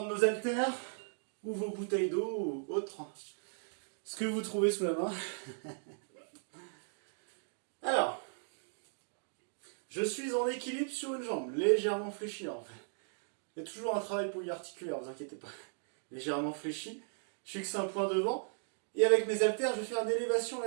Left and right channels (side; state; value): left; silent; digital silence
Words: nos haltères ou vos bouteilles d'eau ou autre, ce que vous trouvez sous la main. Alors, je suis en équilibre sur une jambe, légèrement fléchie en fait. Il y a toujours un travail polyarticulaire, ne vous inquiétez pas. Légèrement fléchi, je fixe un point devant, et avec mes haltères, je vais faire une élévation